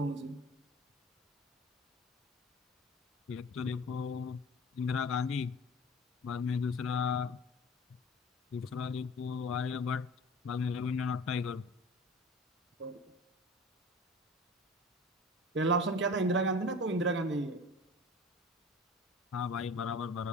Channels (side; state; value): both; normal; correlation 0.40